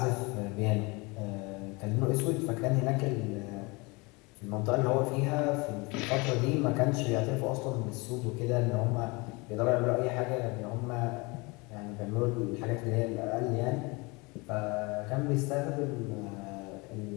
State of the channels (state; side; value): quieter; right; 26.5 dB